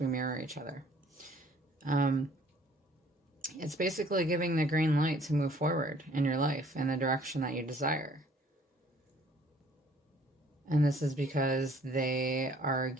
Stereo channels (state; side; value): normal; both; correlation 0.57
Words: mirror each other. It's basically giving the green light to move forward in your life in the direction that you desire. And this is because they are